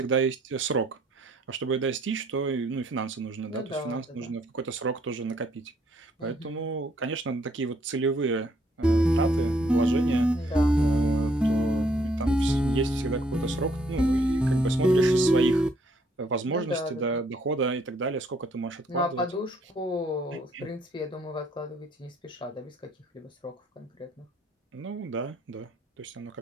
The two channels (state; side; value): normal; both; correlation 0.67